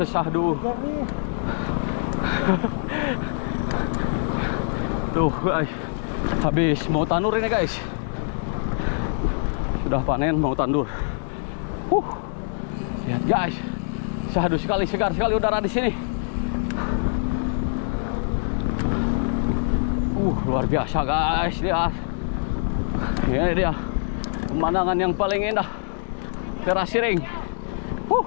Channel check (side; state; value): right; silent; digital silence